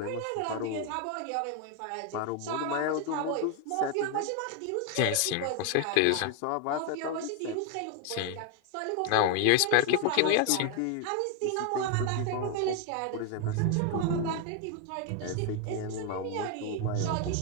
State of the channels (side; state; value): both; different; correlation 0.00